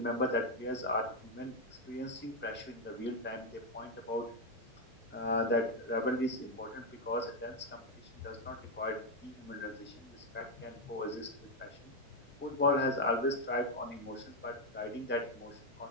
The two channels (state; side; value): normal; both; correlation 0.03